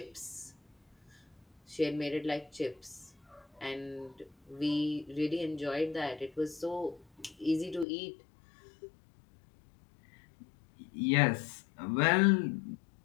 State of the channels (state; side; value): drops out; right; at 7.9 s